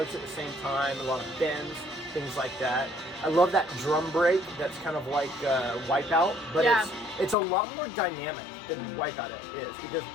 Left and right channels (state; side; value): drops out; right; at 7.4 s